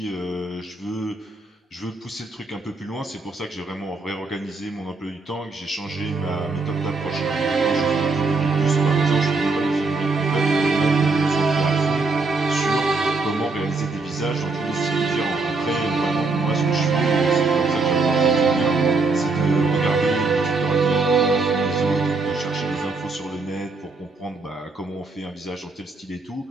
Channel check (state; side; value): quieter; left; 3.7 dB